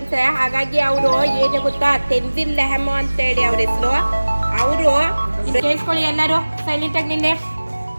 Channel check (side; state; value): both; inverted; correlation -1.00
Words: ಹಾಗಾಗಿ ಅವರು ಏನು ಗೊತ್ತಾ, ತೆನ್ಜಿಲ್ ಲೆಹಮೋ ಅಂತ ಹೇಳಿ ಅವ್ರ ಹೆಸರು. ಅವರು ಕೇಳಿಸ್ಕೊಳ್ಳಿ ಎಲ್ಲರೂ ಸೈಲೆಂಟ್ ಆಗಿ ನಿನ್ನೆ.